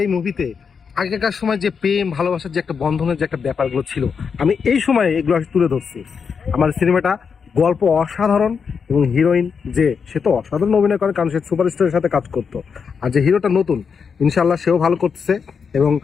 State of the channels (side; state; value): right; quieter; 6.1 dB